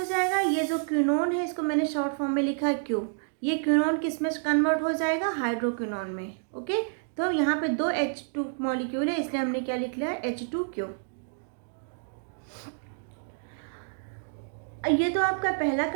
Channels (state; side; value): silent; left; digital silence